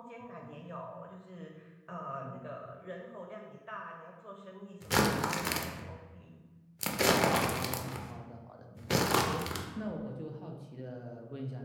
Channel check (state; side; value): identical; both; correlation 1.00